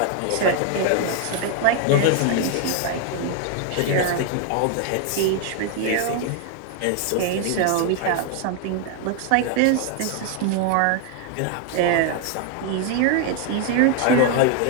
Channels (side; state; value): both; different; correlation 0.01